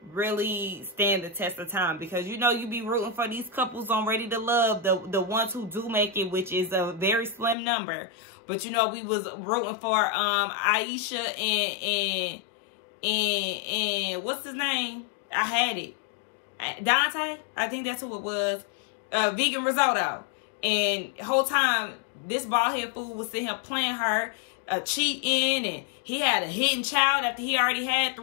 really stand the test of time. Because, you know, you be rooting for these couples on Ready to Love. The ones who do make it, which is a very slim number. But, you know, we was rooting for Aisha and what's his name? I had it. Dante? I think that's who it was. Vegan Risotto. And the whole time, this bald head fool was sitting here playing her, cheating, and he had a hidden child after he already had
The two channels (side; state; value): right; drops out; at 7.6 s